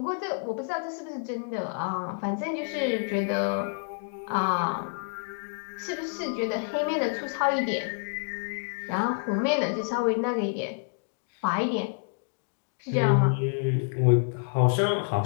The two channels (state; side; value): silent; right; digital silence